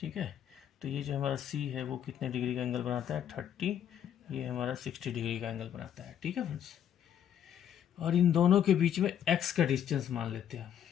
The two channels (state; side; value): quieter; right; 9.7 dB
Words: है। तो ये जो हमारा सी है वो कितने डिग्री का एंगल बनाता है, 30, ये हमारा 60 डिग्री का एंगल बनाता है, ठीक है फ्रेंड्स। और इन दोनों के बीच में एक्स का डिस्टेंस मान लेते हैं,